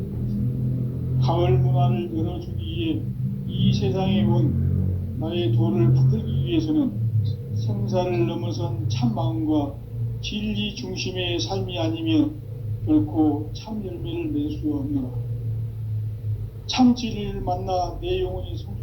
가을 문화를 열어주기 위해 이 세상에 온 나의 도를 붙들기 위해서는 생사를 넘어선 참 마음과 진리 중심의 삶이 아니면 결코 참 열매를 맺을 수 없노라. 참 진리를 만나 내 영혼이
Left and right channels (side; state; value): both; identical; correlation 1.00